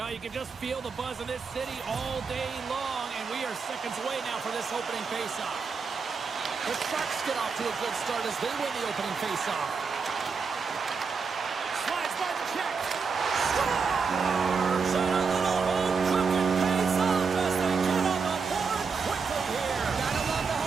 you can just feel the buzz in this city all day long, and we are seconds away now for this opening faceoff. The Sharks get off to a good start as they win the opening faceoff. Slides by the check. Scores! And a little home cooking pays off as they get on the board quickly here. Gotta love the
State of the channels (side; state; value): left; quieter; 5.3 dB